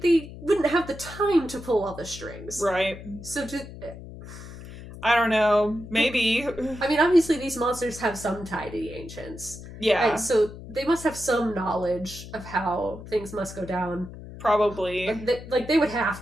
wouldn't have the time to pull all the strings. Right. So I don't know. Maybe. I mean, obviously these monsters have some tie to the ancients. Yeah. And so they must have some knowledge of how things must go down. Probably. They would have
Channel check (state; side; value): noise; left; hum, 14 dB below the sound